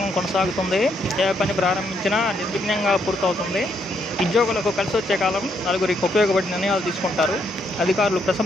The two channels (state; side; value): normal; both; correlation 0.75